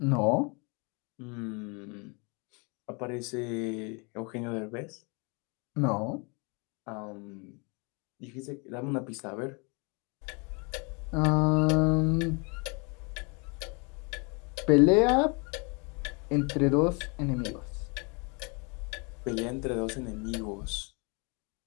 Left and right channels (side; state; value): right; quieter; 32.2 dB